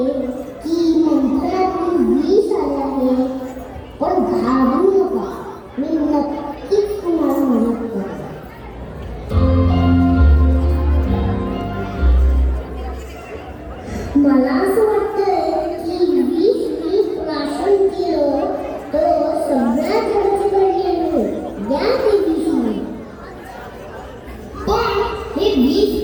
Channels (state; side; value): identical; both; correlation 1.00